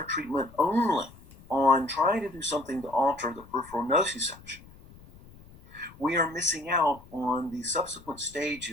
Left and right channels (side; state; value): left; noise; rumble, 22 dB below the sound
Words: treatment only on trying to do something to alter the peripheral nociception, we are missing out on the subsequent